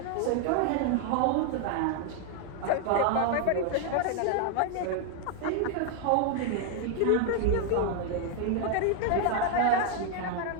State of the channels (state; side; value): different; both; correlation 0.00